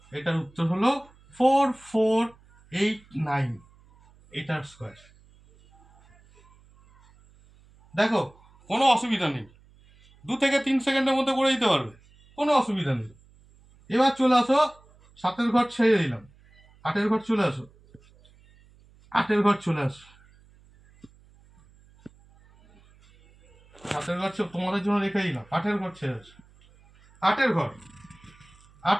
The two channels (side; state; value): right; noise; hum, 28 dB below the sound